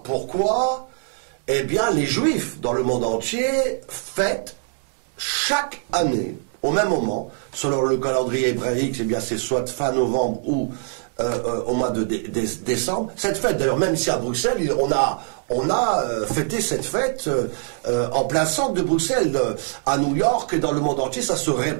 Pourquoi? Eh bien, les Juifs dans le monde entier fêtent chaque année, au même moment, selon le calendrier hébraïque, eh bien, c'est soit fin novembre ou au mois de décembre. Cette fête, d'ailleurs, même ici à Bruxelles, on a fêté cette fête en plein centre de Bruxelles, à New York, et dans le monde entier, ça se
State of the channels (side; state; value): left; silent; digital silence